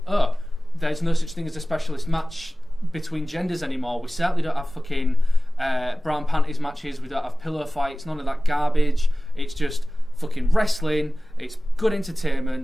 there's no such thing as a specialist match between genders anymore. We certainly don't have fucking brown panties matches. We don't have pillow fights. None of that garbage. It's just fucking wrestling. It's good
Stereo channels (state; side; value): normal; both; correlation 0.97